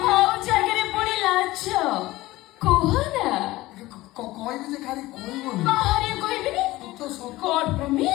ଆଉ ଜାଗାରେ ପୁଣି ଲାଜ କୁହ ନା। କହିବି ଯେ ଖାଲି କହିବନି। ବାହାରେ କହିବିନି। God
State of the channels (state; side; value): quieter; right; 18.2 dB